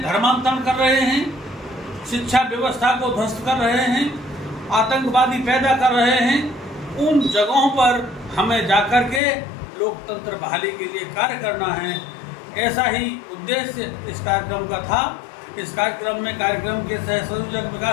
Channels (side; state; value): right; drops out; at 9.2 s